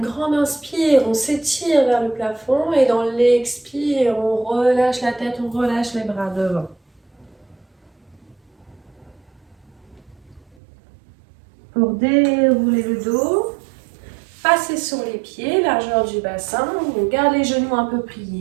inspire, on s'étire vers le plafond et dans l'expire, on relâche la tête, on relâche les bras devant. Pour dérouler le dos, passez sur les pieds, largeur du bassin, on garde les genoux un peu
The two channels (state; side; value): drops out; left; at 10.6 s